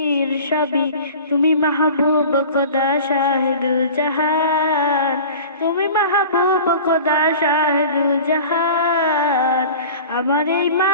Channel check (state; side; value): inverted; both; correlation -0.40